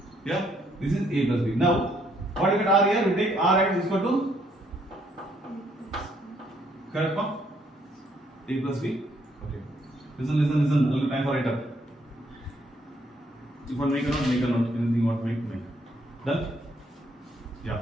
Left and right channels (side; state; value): both; normal; correlation 0.69